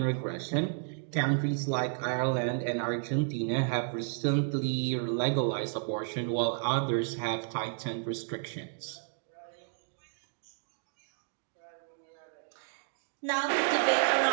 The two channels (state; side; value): silent; left; digital silence